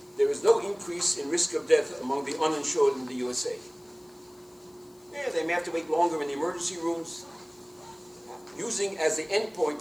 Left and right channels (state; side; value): noise; left; hiss, 30 dB below the sound